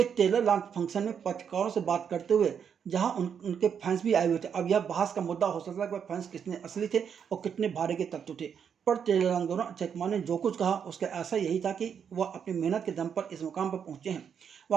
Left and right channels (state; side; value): quieter; left; 7.5 dB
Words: ट्रेलर लॉन्च फंक्शन में पत्रकारों से बात करते हुए जहां उनके फैंस भी आए हुए थे। अब यह बहस का मुद्दा हो सकता है कि वह फैंस कितने असली थे और कितने भारे के तत्व थे, पर ट्रेलर लॉन्च दौरान अक्षय कुमार ने जो कुछ कहा उसका ऐसा यही था कि वह अपनी मेहनत के दम पर इस मुकाम पर पहुंचे हैं,